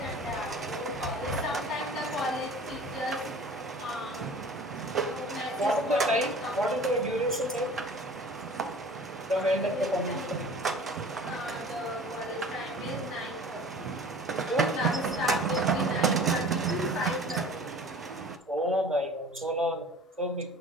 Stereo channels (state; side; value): normal; both; correlation 0.44